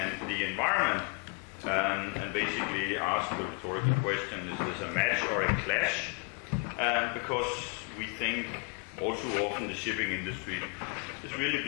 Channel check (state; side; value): quieter; right; 31.4 dB